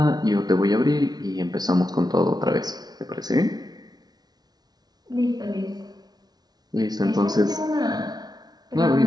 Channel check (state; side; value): late; left; 0.19 ms